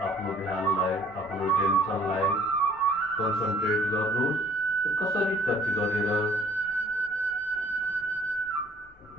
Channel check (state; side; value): normal; both; correlation 0.59